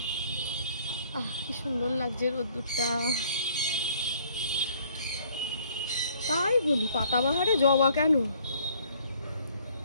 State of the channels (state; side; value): inverted; both; correlation -0.59